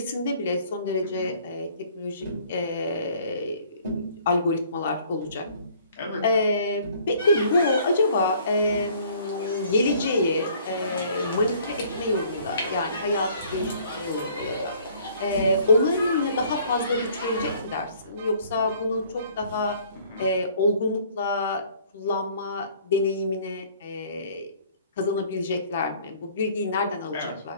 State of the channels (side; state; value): both; inverted; correlation -0.57